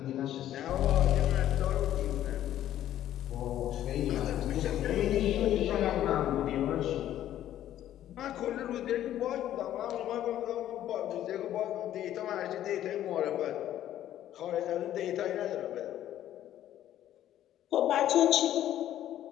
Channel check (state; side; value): quieter; right; 12.1 dB